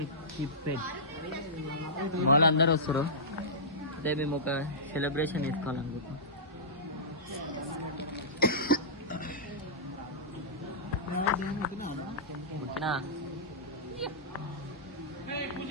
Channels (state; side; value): normal; both; correlation -0.17